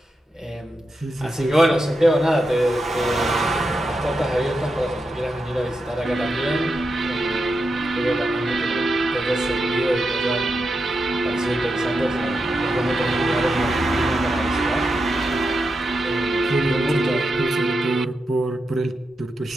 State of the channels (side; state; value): both; normal; correlation 0.87